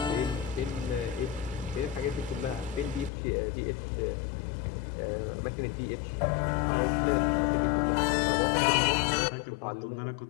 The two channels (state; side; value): drops out; right; at 3.1 s